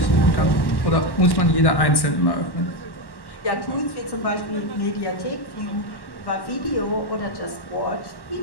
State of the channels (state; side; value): late; right; 1.1 ms